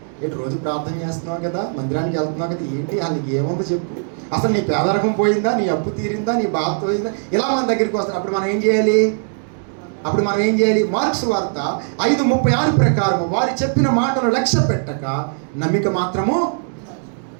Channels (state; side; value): silent; left; 61 dB below the other